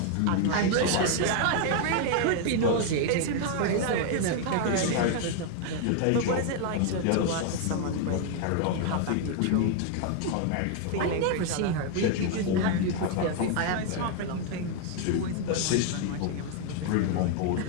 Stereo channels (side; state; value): both; different; correlation 0.00